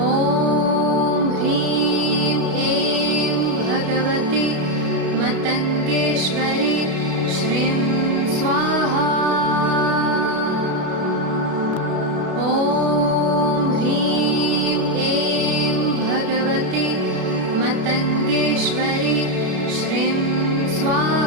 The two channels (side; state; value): left; late; 32 ms